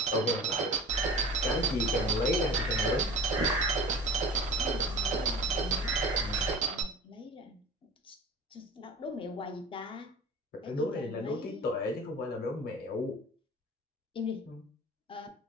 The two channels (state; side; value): normal; both; correlation 0.38